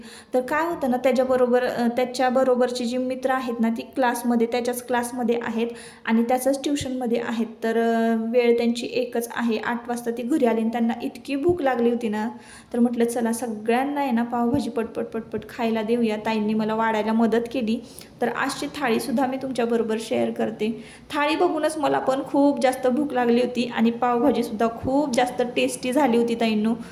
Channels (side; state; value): both; identical; correlation 1.00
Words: तर काय होतं ना, त्याच्याबरोबरची जी मित्र आहेत ना, ती त्याच्याच क्लासमध्ये आहेत आणि त्याचंच ट्युशनमध्ये आहेत. तर वेळ त्यांची एकच आहे. 8 वाजता ती घरी आली आणि त्यांना इतकी भूक लागली होती ना, तर म्हटलं चला सगळ्यांना आहे ना पावभाजी पटपट खायला देऊया. ताईंनी मला वाढायला मदत केली. तर आजची थाळीसुद्धा मी तुमच्याबरोबर शेअर करते. थाळी बघूनच मला पण खूप जास्त भूक लागली होती आणि पावभाजीसुद्धा खूप जास्त टेस्टी झाली होती ताईंनो.